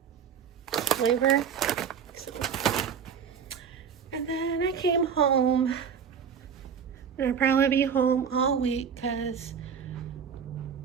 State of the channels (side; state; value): left; quieter; 7.3 dB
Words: flavor. So. And then I came home. And I'll probably be home all week because